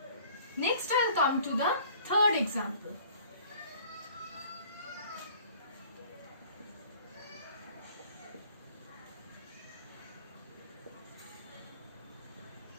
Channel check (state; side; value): inverted; both; correlation -0.52